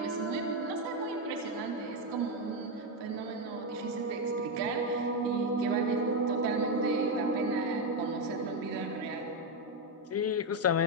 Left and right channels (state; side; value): normal; both; correlation 0.05